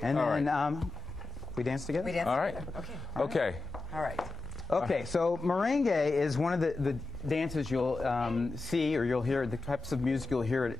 And then we dance together? We dance all right. together. Okay. Okay. All right. Okay, so merengue is one of the dances you'll see, or you'll hear, the types of music you'll hear at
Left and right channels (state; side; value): quieter; right; 3.8 dB